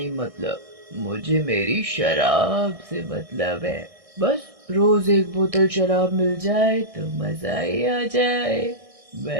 मतलब, मुझे मेरी शराब से मतलब है। बस रोज एक बोतल शराब मिल जाए तो मजा ही आ जाए।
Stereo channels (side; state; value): left; late; 1.6 ms